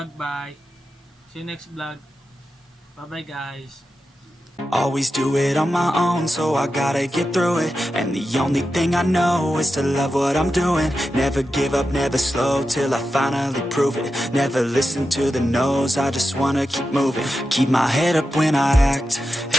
bye. See you next vlog. Bye bye guys. Always do it on my own, so I gotta get through it. And the only thing I know is to love what I'm doing. Never give up, never slow, till I finally prove it. Never listen to the no's, I just wanna keep moving. Keep my head up when I act,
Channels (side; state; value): both; normal; correlation 0.90